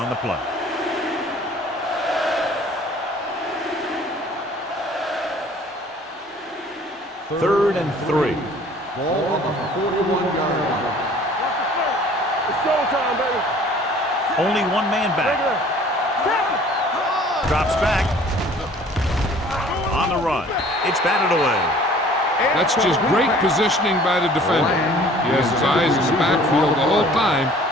the play. Third and 3. Ball on the 41-yard line. It's showtime, baby. Only one man Take back. it up. Drops back. On the run. It's batted away. That's just great positioning by the defender. He has his eyes in the backfield the whole time,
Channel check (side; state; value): both; normal; correlation 0.52